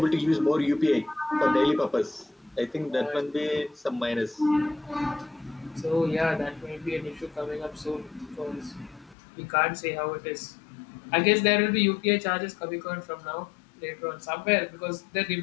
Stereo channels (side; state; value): right; drops out; at 9.2 s